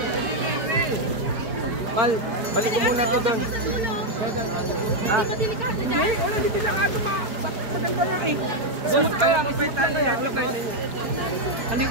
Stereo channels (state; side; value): late; left; 4.9 ms